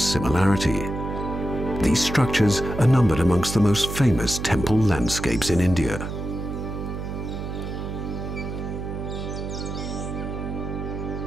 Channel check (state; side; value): noise; right; hum, 6 dB below the sound